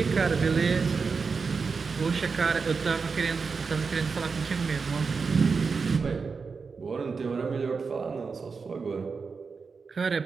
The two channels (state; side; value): quieter; left; 5.0 dB